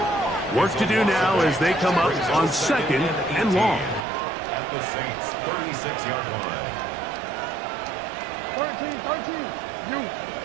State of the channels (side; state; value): left; drops out; at 4.0 s